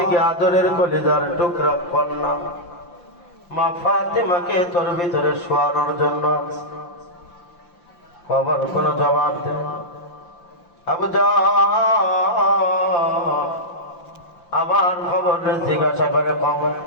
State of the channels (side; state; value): right; late; 5.8 ms